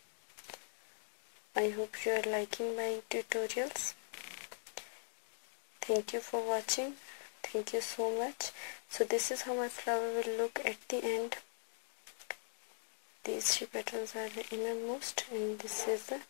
I hope you are liking my tutorials. Thank you for watching. Thank you so much. So this is how my flower will look at the end. These 3 petals are the innermost and this is the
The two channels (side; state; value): right; silent; digital silence